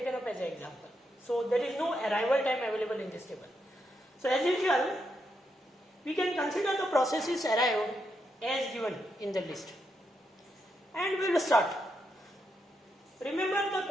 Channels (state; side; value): normal; both; correlation 0.82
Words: up as an example. So there is no arrival time available in this table. So as usual, we can consider the processes arrived as given in the list. And we will start. Remember the